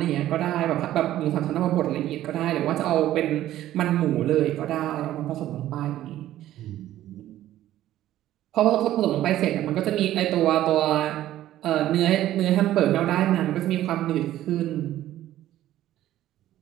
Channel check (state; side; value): quieter; left; 13.5 dB